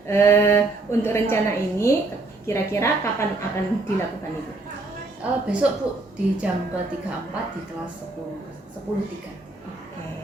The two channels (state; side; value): quieter; left; 3.1 dB